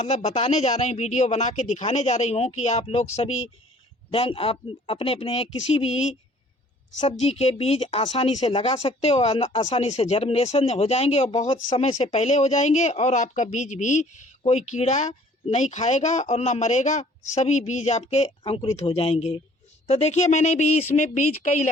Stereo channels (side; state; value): both; normal; correlation 0.55